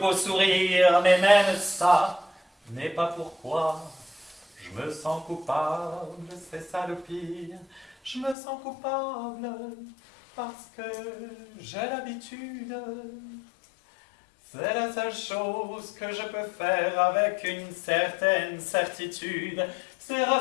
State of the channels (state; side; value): drops out; right; at 8.3 s